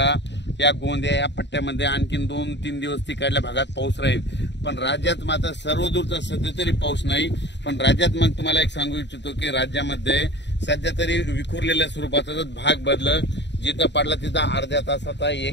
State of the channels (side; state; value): right; late; 0.51 ms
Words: या गोंदिया या पट्ट्यामध्ये आणखीन 2-3 दिवस तिकडल्या भागात पाऊस राहील। पण राज्यात मात्र सर्वदूरचा सध्या तरी पाऊस नाही। पण राज्यात मग तुम्हाला एक सांगू इच्छितो की राज्यामध्ये सध्या तरी विखुरलेल्या स्वरूपाचा भाग बदल जिथं पडला तिथं अर्ध्या तासाचा,